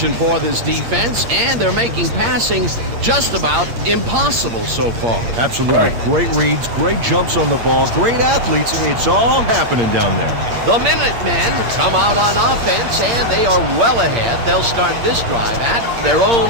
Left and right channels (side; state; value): left; late; 8.6 ms